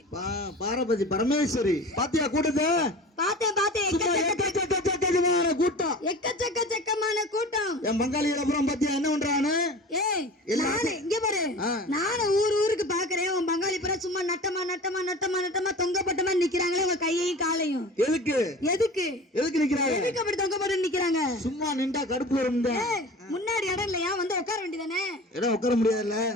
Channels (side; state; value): both; normal; correlation 0.37